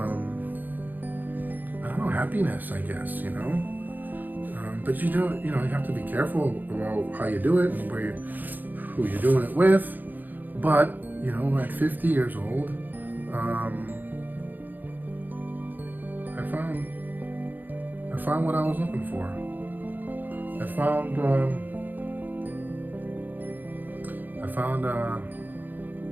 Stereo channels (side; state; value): left; late; 0.086 ms